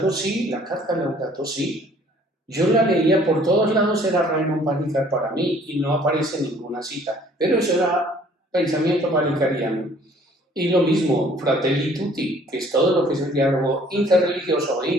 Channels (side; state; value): both; normal; correlation 0.56